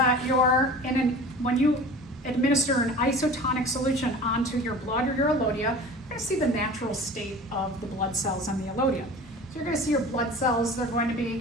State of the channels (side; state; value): both; normal; correlation 0.39